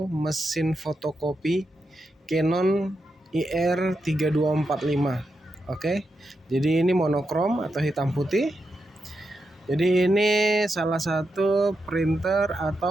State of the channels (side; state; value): both; normal; correlation 0.86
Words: mesin fotokopi Canon IR3245. Oke. Jadi ini monokrom atau hitam putih. Jadi ini salah satu printer